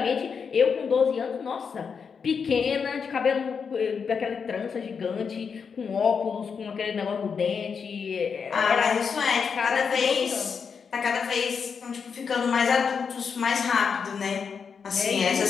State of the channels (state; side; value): quieter; right; 6.1 dB